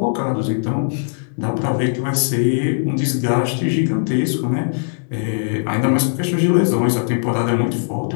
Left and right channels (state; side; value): silent; right; digital silence